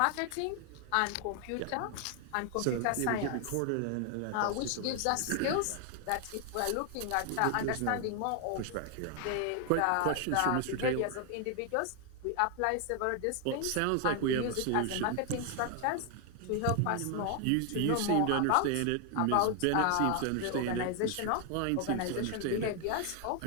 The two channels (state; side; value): different; both; correlation 0.00